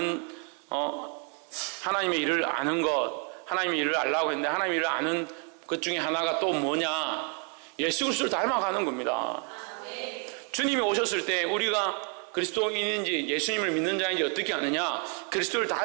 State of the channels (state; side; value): quieter; left; 38.3 dB